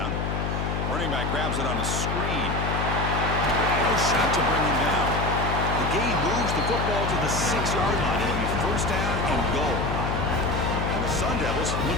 Running back grabs it on a screen. No shot to bring him down. The gain moves the football to the 6-yard line. It'll be first down and goal. And the Sun Devils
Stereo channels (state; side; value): noise; left; hum, 1 dB below the sound